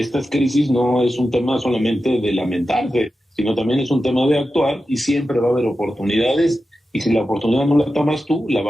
crisis no es un tema solamente de lamentarse, sino también es un tema de actuar y siempre va a haber oportunidades y si la oportunidad no la tomas tú, la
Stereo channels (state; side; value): normal; both; correlation 0.92